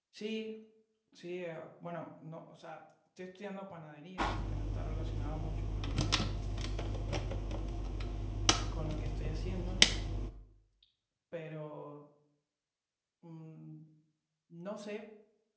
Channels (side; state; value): both; identical; correlation 1.00